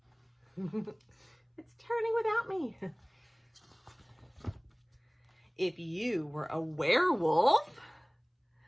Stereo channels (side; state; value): both; identical; correlation 1.00